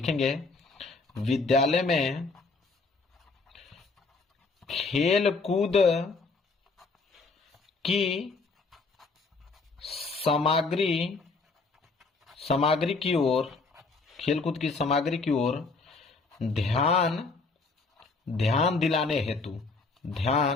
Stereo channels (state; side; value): quieter; right; 4.0 dB